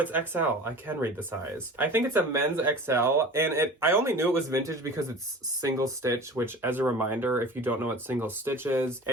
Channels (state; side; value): normal; both; correlation 0.38